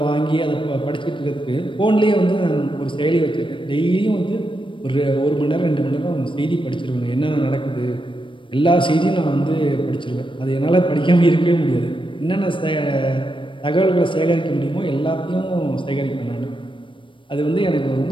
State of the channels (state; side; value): late; right; 0.24 ms